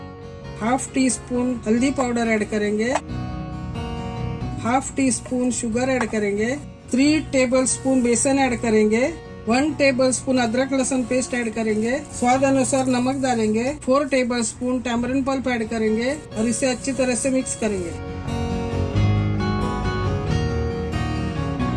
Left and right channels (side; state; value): both; identical; correlation 1.00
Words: हाफ टी स्पून हल्दी पाउडर ऐड करेंगे। Half tea spoon sugar add करेंगे। 3 टेबल स्पून बेसन ऐड करेंगे। 1 टेबल स्पून अदरक लहसुन पेस्ट ऐड करेंगे। स्वाद अनुसार नमक डालेंगे। 4 tablespoon tamarind pulp add करेंगे और इसे अच्छी तरह से मिक्स करेंगे।